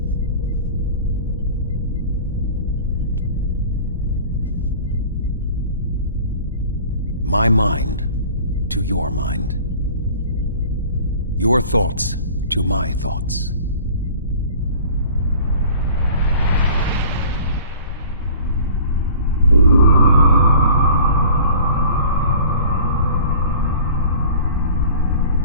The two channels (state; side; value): inverted; both; correlation -0.45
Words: My mind to your mind. Your thoughts to my thoughts.